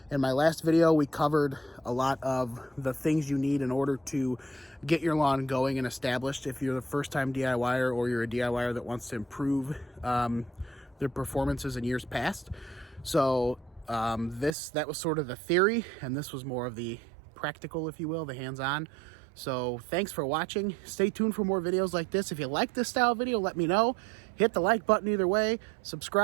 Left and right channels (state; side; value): drops out; left; at 14.5 s